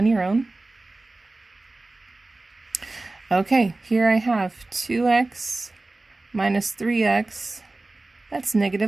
your own. Okay, here I have 2x minus 3x. That's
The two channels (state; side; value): quieter; left; 3.1 dB